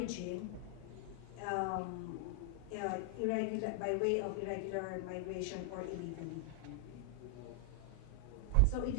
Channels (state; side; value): different; both; correlation 0.00